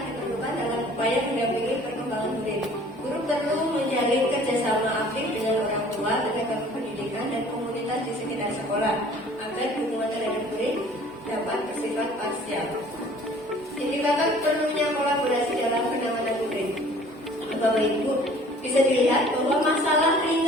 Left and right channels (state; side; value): normal; both; correlation 0.51